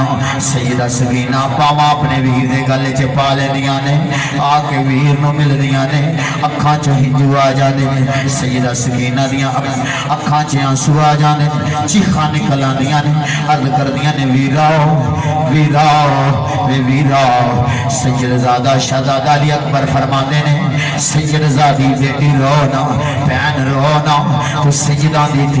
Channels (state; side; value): identical; both; correlation 1.00